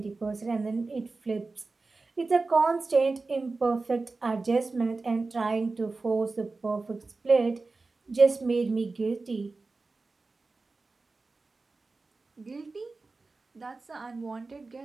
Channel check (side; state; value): left; quieter; 3.7 dB